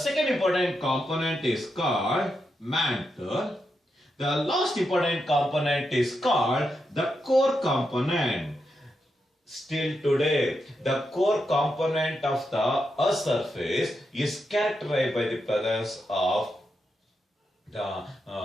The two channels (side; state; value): both; normal; correlation 0.85